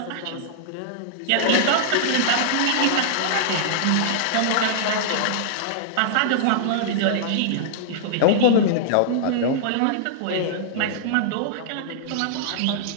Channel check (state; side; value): different; both; correlation -0.01